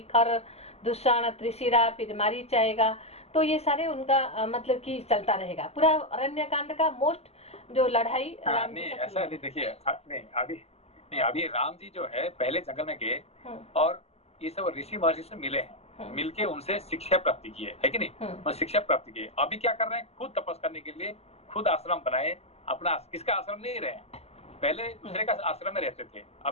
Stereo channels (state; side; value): late; right; 0.30 ms